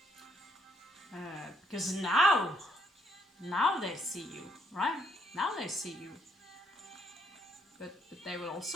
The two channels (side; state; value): both; normal; correlation 0.73